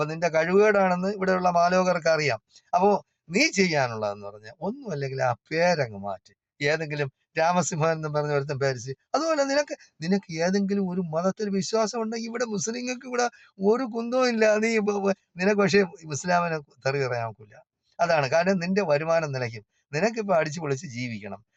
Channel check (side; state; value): both; identical; correlation 1.00